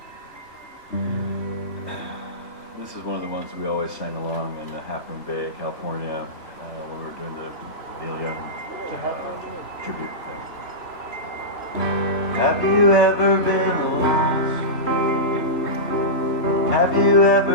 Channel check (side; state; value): right; late; 3.3 ms